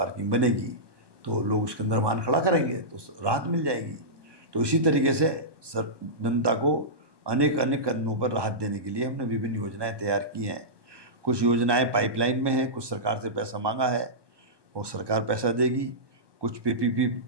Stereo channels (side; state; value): left; late; 1.2 ms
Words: बनेगी तो लोग उसके अंदर वाहन खड़ा करेंगे तो राहत मिल जाएगी। तो इसी तरीके से जनता को अनेक कदमों पर राहत देने के लिए हमने विभिन्न योजनाएं तैयार की हैं। कुछ योजनाएं पाइपलाइन में हैं, कुछ सरकार से पैसा मांगा है और सरकार पैसा देगी, कुछ पीपीपी